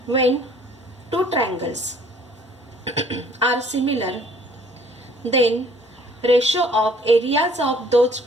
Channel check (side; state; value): both; normal; correlation 0.56